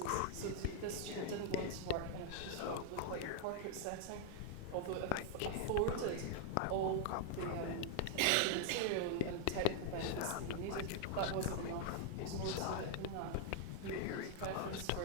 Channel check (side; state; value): both; different; correlation -0.01